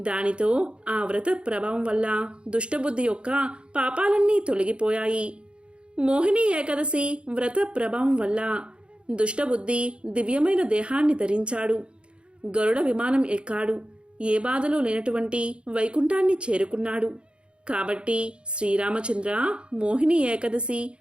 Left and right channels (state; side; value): late; left; 0.056 ms